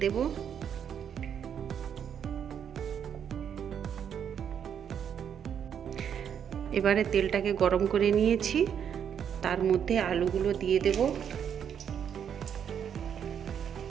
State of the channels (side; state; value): left; quieter; 8.3 dB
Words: দেব। এবারে তেলটাকে গরম করে নিয়েছি, তার মধ্যে আলুগুলো দিয়ে দেব।